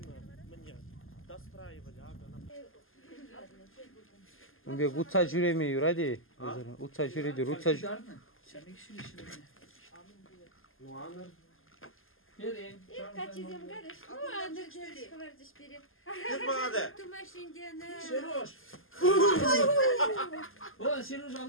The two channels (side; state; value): right; late; 0.59 ms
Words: мне достраивали, ага. Унбе утса жүреми юради. Утса жүреді, утса жүр. Ну аныр. Берин. Качизем гарыш. Ну, аныр дедушка вардыш берет. Кет бағады? Тумашиндені. Сереж. О, Сереж